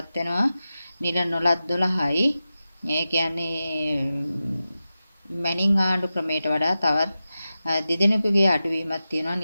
වෙනවා. නිල නොලත් 12යි. ඒ කියන්නේ මැනින් ආණ්ඩු ක්‍රමයට වඩා තවත් දෙදෙනෙකුගේ අඩුවීමක් තියෙනවා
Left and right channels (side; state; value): both; inverted; correlation -0.93